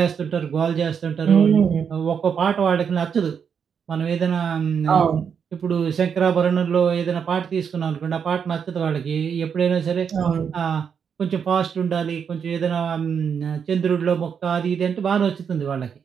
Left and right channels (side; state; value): left; quieter; 7.1 dB